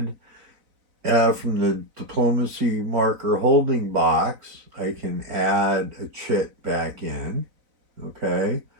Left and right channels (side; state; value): left; late; 4.0 ms